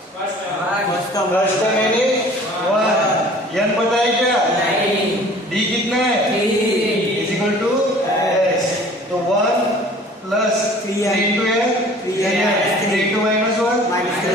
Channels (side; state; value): both; normal; correlation 0.49